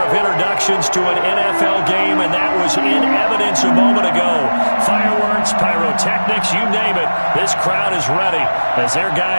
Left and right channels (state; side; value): inverted; both; correlation -1.00